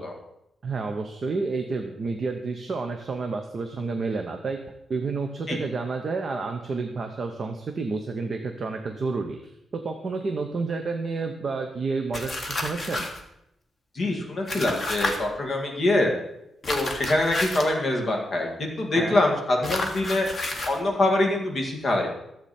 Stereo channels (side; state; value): both; normal; correlation 0.83